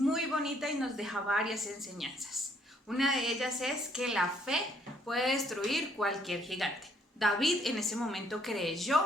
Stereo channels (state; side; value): normal; both; correlation 0.67